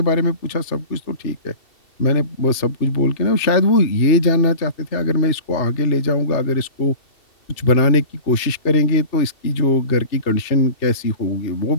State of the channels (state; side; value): late; right; 2.7 ms